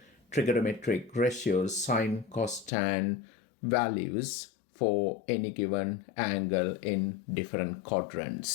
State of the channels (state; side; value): drops out; right; at 2.7 s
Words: trigonometric ratios, sine, cos, tan values for any given angle in different